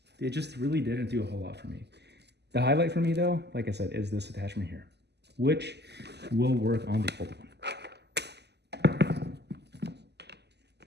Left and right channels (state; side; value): late; left; 0.49 ms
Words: just really didn't do a whole lot for me. The highlight for me though, like I said, is this attachment here, which will work on the old one,